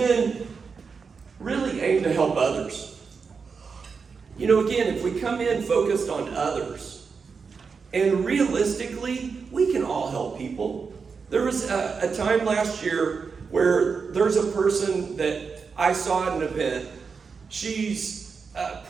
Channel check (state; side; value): quieter; left; 5.3 dB